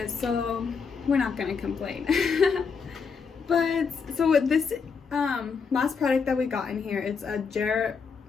so we're not gonna complain. But so with this last product that we got in here, it's a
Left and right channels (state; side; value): quieter; right; 5.6 dB